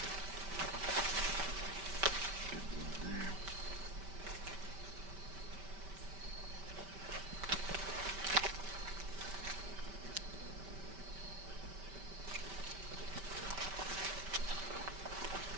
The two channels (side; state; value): left; late; 5.1 ms